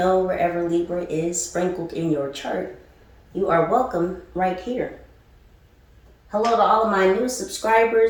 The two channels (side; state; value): both; identical; correlation 1.00